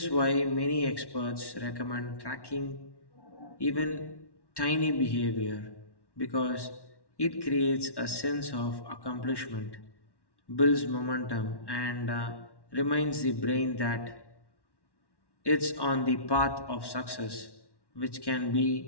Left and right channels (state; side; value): late; right; 1.1 ms